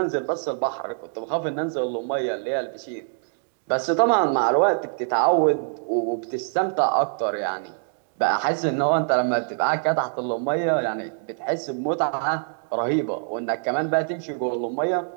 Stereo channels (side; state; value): left; silent; digital silence